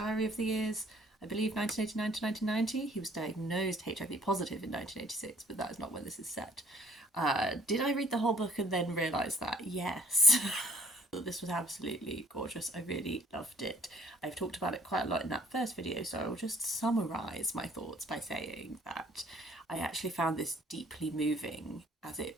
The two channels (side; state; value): both; normal; correlation 0.59